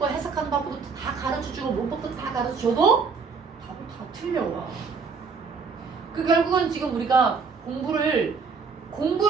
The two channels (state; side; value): quieter; left; 5.2 dB